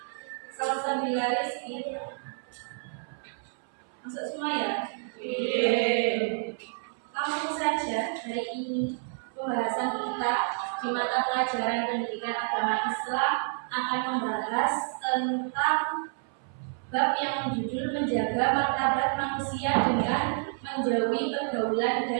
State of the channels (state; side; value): silent; left; 58 dB below the other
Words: Salsabila Rizki. Masuk semua ya? Langsung saja hari ini pembahasan kita di mata pelajaran pendidikan agama Islam akan membahas tentang bab yang berjudul menjaga martabat manusia dengan menjauhi pergaulan